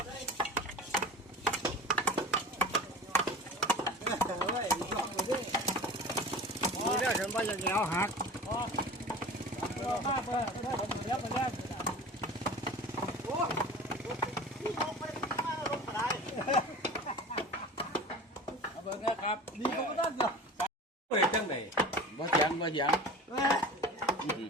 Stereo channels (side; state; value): both; normal; correlation 0.36